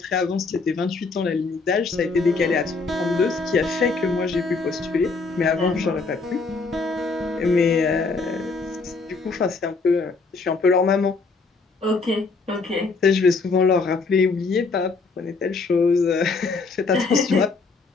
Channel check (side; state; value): right; quieter; 4.2 dB